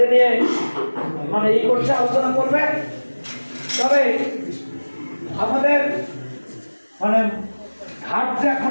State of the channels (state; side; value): inverted; both; correlation -1.00